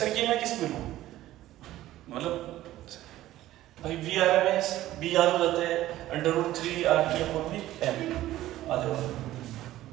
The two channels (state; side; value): quieter; left; 14.8 dB